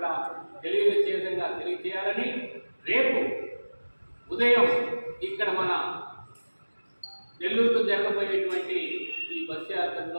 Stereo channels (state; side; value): inverted; both; correlation -1.00